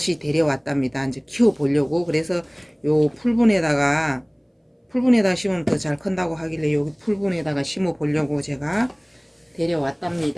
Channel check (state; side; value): identical; both; correlation 1.00